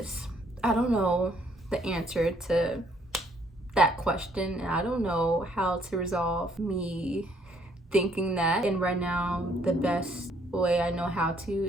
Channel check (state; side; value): normal; both; correlation 0.66